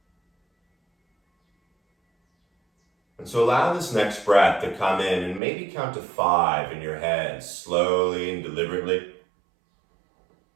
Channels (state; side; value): drops out; left; at 5.4 s